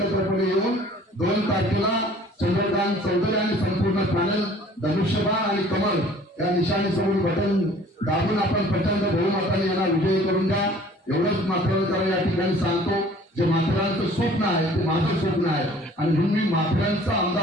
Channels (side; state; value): both; normal; correlation 0.52